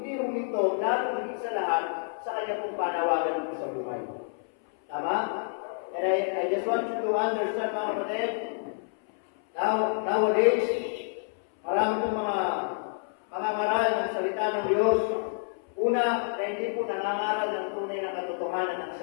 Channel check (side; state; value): right; silent; 59 dB below the other